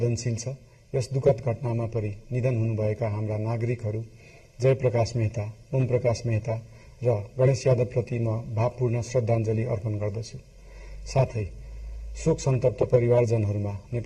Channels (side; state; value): both; identical; correlation 1.00